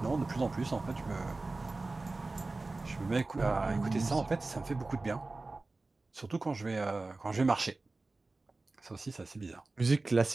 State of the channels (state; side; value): quieter; left; 3.4 dB